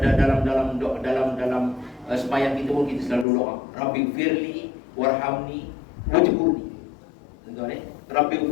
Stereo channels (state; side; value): drops out; right; at 3.2 s